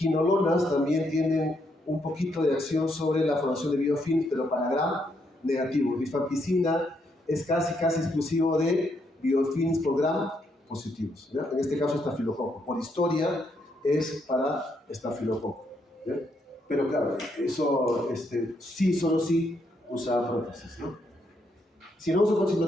también tienen un poquito de acción sobre la formación de biofilm, pero para gram negativos. Rifampicina es casi exclusivo de biofilms por gram positivos, ¿ya? En este caso estafilococo. Por historia es para estafilococo, ¿ya? Pero claro, eso sí, solo sí usa prótesis, ¿no? Si no usa prótesis no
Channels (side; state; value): both; normal; correlation 0.76